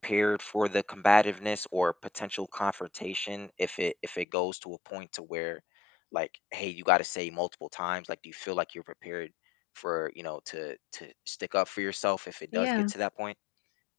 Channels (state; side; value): drops out; right; at 4.2 s